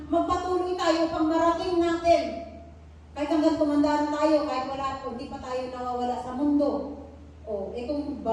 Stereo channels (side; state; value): both; identical; correlation 1.00